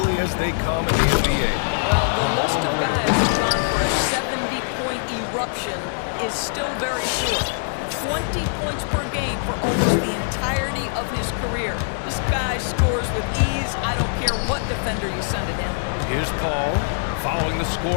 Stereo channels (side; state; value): right; silent; digital silence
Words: as they come in the NBA. Well, the list of guys who've gone for a 70-point eruption is still very short. 20 points per game for almost the entirety of his career. This guy scores with ease. I don't care what defender you send at him. Here's Paul, following the